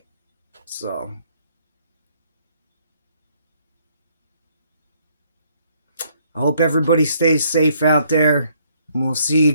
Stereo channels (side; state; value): both; inverted; correlation -0.67